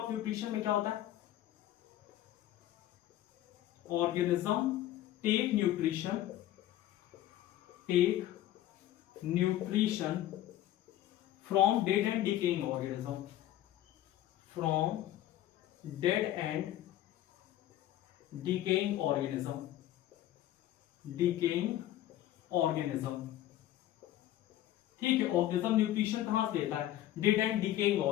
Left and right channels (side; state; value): right; quieter; 13.4 dB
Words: न्यूट्रिशन में क्या होता है, organism take nutrition from dead and decaying organism, from dead and decaying organism, ठीक है। ऑर्गेनिज्म न्यूट्रिशन कहां से लेता है, डेड एंड डिकेइंग